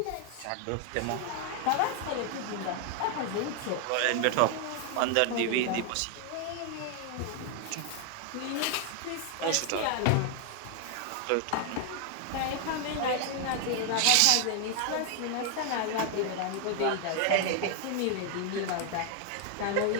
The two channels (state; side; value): different; both; correlation 0.01